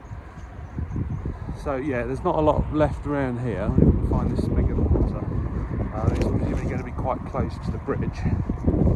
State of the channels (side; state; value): both; identical; correlation 1.00